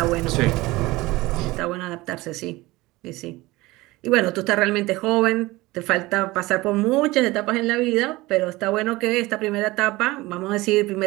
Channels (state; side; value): quieter; left; 20.3 dB